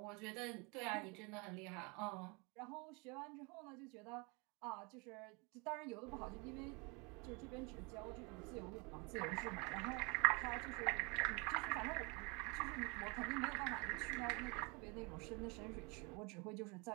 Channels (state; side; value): quieter; left; 29.8 dB